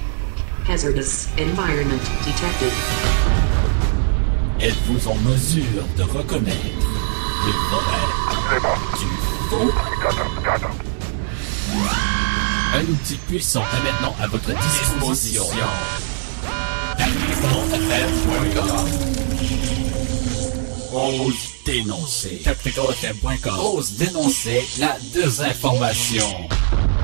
Hazardous environment detected. Êtes-vous en mesure de reconnaître le vrai du faux? Un outil puissant est maintenant à votre disposition. TacticalFM.com. Ose dénoncer. TacticalFM.com. Ose dénoncer la désinformation.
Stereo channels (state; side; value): silent; left; 65 dB below the other